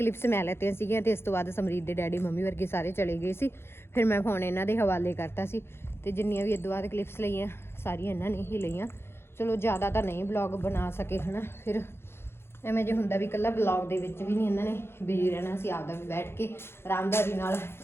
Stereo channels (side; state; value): right; late; 0.12 ms